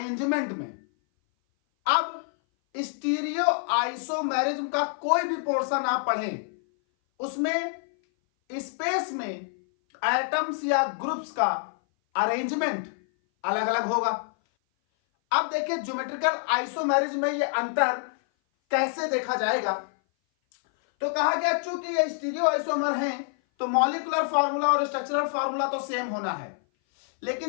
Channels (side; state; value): right; silent; 57 dB below the other